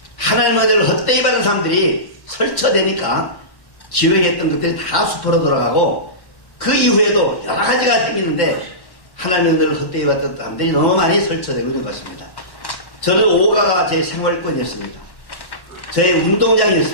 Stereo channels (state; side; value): late; right; 1.1 ms